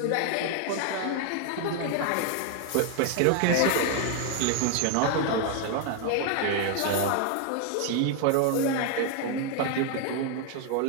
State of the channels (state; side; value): different; both; correlation 0.00